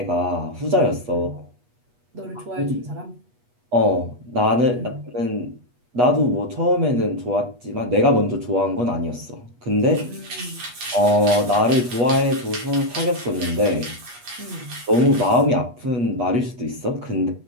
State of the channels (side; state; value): left; late; 8.3 ms